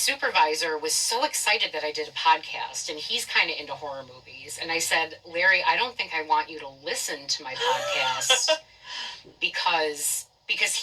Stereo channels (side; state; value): both; identical; correlation 1.00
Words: was so excited that I did a podcast, and he's kind of into horror movies. And I said, Larry, I don't think I want you to listen to my podcast because